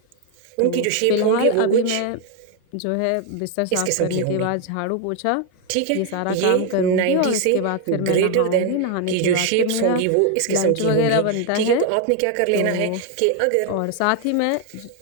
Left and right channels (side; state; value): both; different; correlation 0.01